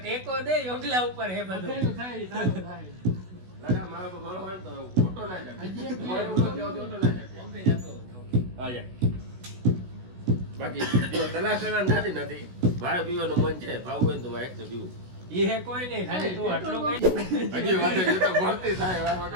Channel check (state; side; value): late; left; 16 ms